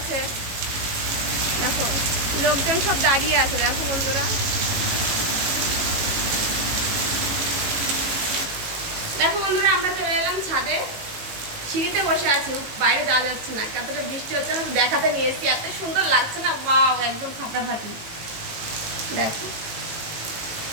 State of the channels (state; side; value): late; left; 18 ms